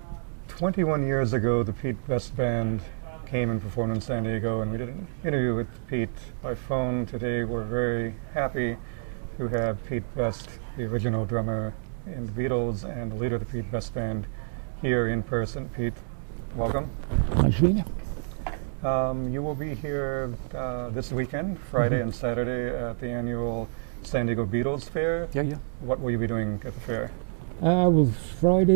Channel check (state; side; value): silent; left; digital silence